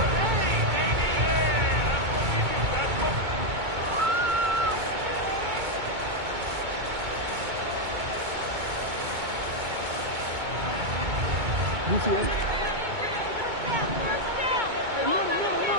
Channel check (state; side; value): late; left; 2.2 ms